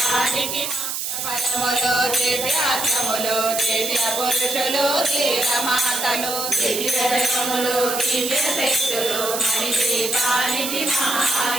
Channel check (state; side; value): noise; right; hiss, 3 dB below the sound